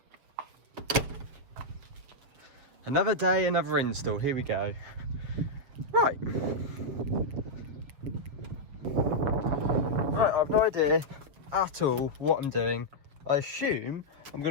Another day, another install. Here we go. Right. Right, I've no idea at all what I'm doing. I assume I'm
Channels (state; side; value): late; left; 7.5 ms